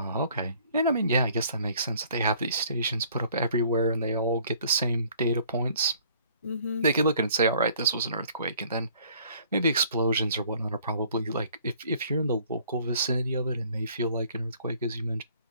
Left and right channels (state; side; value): inverted; both; correlation -0.57